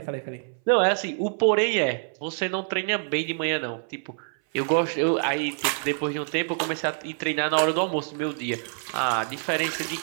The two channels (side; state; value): left; silent; 58 dB below the other